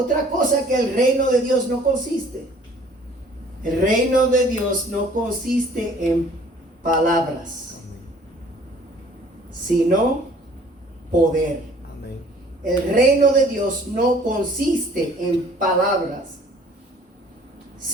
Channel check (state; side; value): normal; both; correlation 0.54